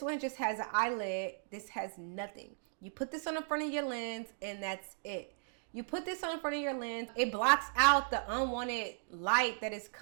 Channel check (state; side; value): silent; left; digital silence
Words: one just has an eyelid. This has nothing. You put this on the front of your lens and that's it. You put this on the front of your lens, it blocks out the unwanted light that is